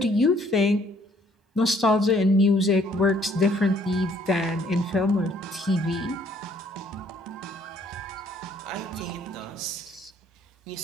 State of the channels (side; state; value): both; normal; correlation 0.63